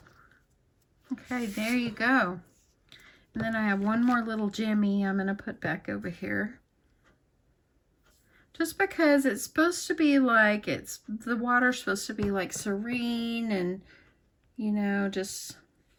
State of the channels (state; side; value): identical; both; correlation 1.00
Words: Okay, there you go. And then I have one more little jimmy I'm going to put back over here. Just because it's supposed to be like, the water's supposed to be like serene and, you know, it's